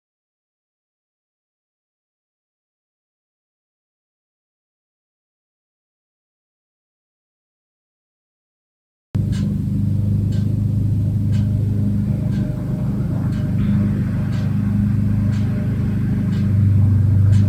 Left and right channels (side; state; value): both; identical; correlation 1.00